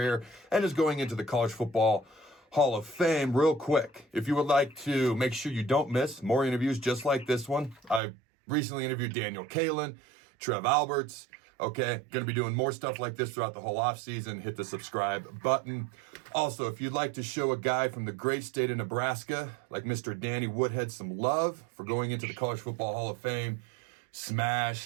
and is going into the College Football Hall of Fame, real quick, if you would like to make sure you don't miss more interviews just like this one, I recently interviewed Daniel Kalin, Trev Alberts. Okay, going to be doing more stuff like this throughout the whole offseason. Hit the subscribe button. Also, if you'd like to show a guy from the great state of Nebraska, like Mr. Danny Woodhead, some love for going into the College Football Hall of Fame,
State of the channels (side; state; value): left; drops out; at 8.0 s